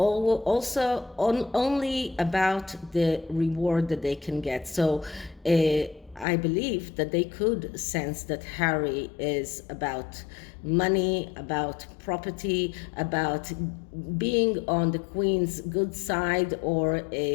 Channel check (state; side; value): drops out; right; at 6.2 s